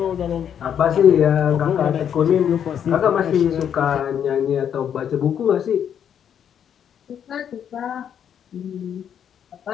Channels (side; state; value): right; quieter; 8.8 dB